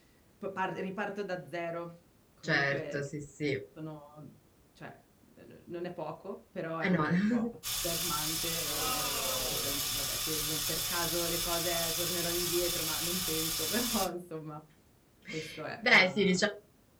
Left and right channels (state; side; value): identical; both; correlation 1.00